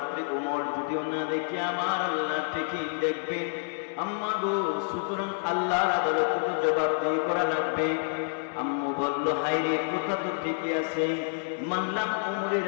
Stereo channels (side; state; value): right; silent; 59 dB below the other